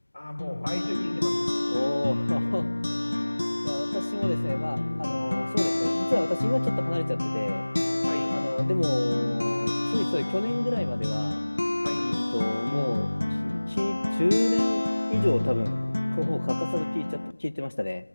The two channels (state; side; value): inverted; both; correlation -1.00